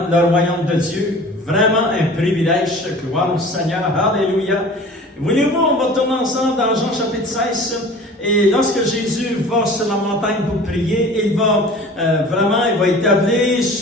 le royaume de Dieu. Vraiment un privilège. Gloire au Seigneur. Alléluia. Voulez-vous, on va tourner ensemble dans Jean chapitre 16. Et lorsque Jésus va sur la montagne pour prier, il va établir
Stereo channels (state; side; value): normal; both; correlation 0.43